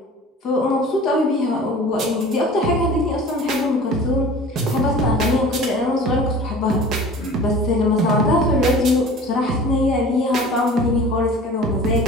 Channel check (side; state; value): both; normal; correlation 0.42